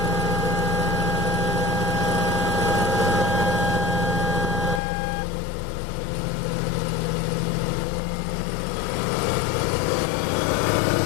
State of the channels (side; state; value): right; drops out; at 4.8 s